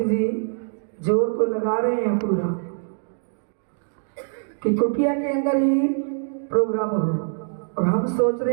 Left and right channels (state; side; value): silent; left; 63 dB below the other